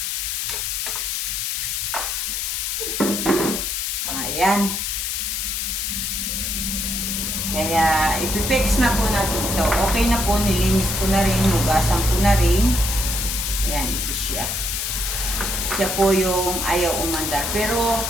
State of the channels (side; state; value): left; noise; hiss, 1 dB below the sound